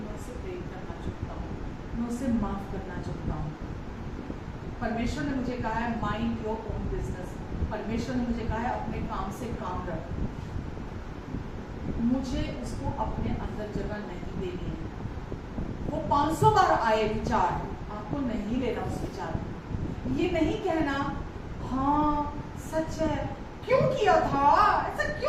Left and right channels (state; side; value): identical; both; correlation 1.00